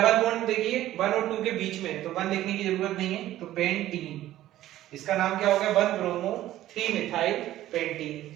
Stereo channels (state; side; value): quieter; left; 14.0 dB